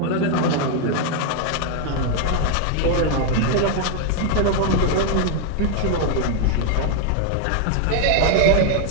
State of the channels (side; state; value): both; different; correlation 0.00